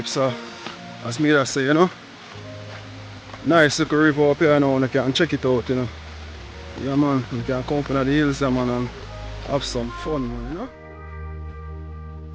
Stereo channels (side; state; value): both; identical; correlation 1.00